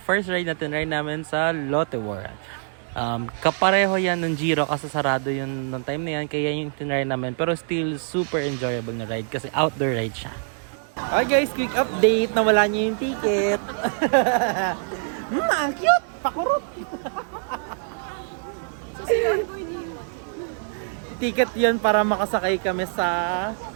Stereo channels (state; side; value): silent; left; 62 dB below the other